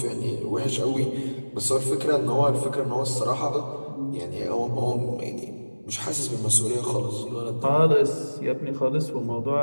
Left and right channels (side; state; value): both; inverted; correlation -1.00